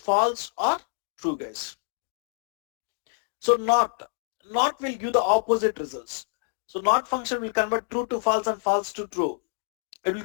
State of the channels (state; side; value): silent; right; digital silence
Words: or true, guys. So not will give the opposite results. So not function will convert true to false and false to true. It will